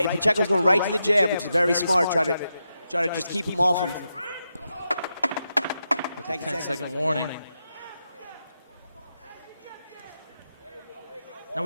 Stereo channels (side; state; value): both; inverted; correlation -0.86